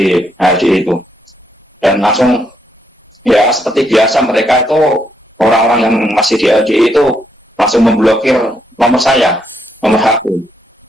HRDI itu, dan langsung ya seperti biasa mereka itu orang-orang yang masih di HRDI itu langsung memblokir nomor saya, nomor HP.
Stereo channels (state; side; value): normal; both; correlation 0.76